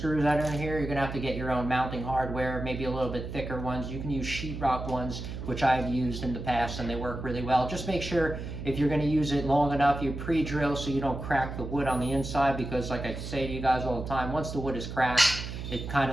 that are in here. You're going to have to get your own mounting hardware, maybe a little bit thicker ones. You can use sheetrock ones, which I've used in the past, and they work really well. Just make sure if you're going to use it long enough, you pre-drill so you don't crack the wood on the inside, because like I say to you guys all the time, once the wood is cracked, it kind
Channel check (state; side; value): noise; right; hum, 7 dB below the sound